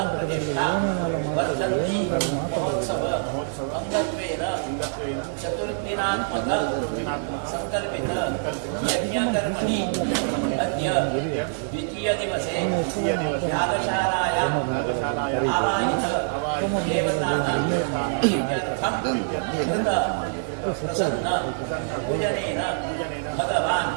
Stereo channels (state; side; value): silent; left; digital silence